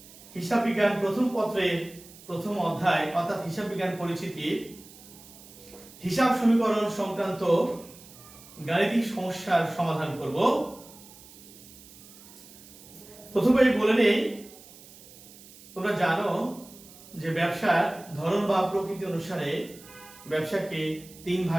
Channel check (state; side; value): noise; right; hiss, 20 dB below the sound